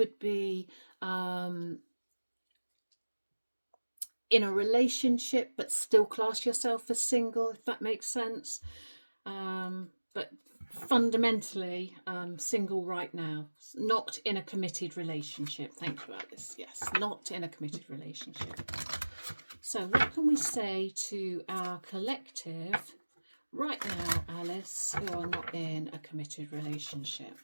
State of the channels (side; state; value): both; inverted; correlation -1.00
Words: be in a relationship but still class yourself as single, if that makes sense. But fundamentally single right now, not in a committed relationship. Thank you, Alice. Yes, not in a committed relationship. So what can we say to our collective right now, Alice, who are not in a committed relationship?